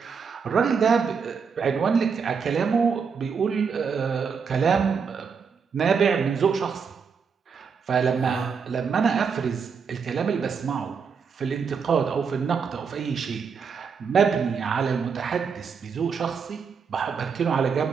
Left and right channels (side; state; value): left; quieter; 6.0 dB